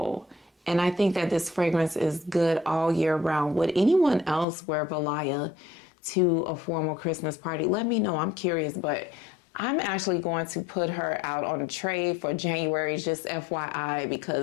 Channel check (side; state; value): right; drops out; at 4.5 s